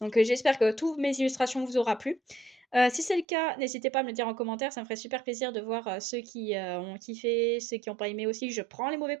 j'espère que toutes mes illustrations vous aura plu. Si c'est le cas, n'hésitez pas à me le dire en commentaire, ça me ferait super plaisir de voir ceux qui ont kiffé, ceux qui n'ont pas aimé aussi. Je prends les mauvais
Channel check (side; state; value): left; drops out; at 3.2 s